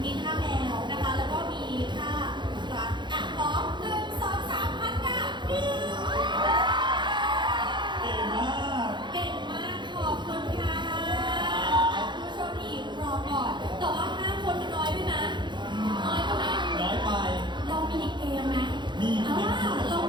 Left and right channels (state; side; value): late; left; 0.22 ms